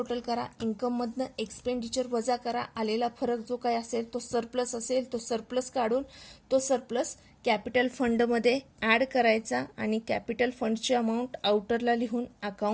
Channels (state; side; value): identical; both; correlation 1.00